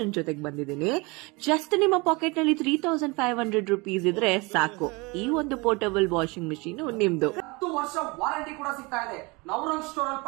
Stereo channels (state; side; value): quieter; left; 26.5 dB